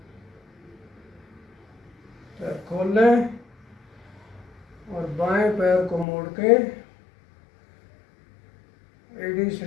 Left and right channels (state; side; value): drops out; right; at 6.1 s